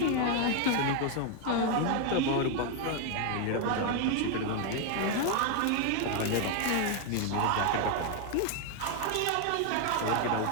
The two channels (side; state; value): both; different; correlation 0.01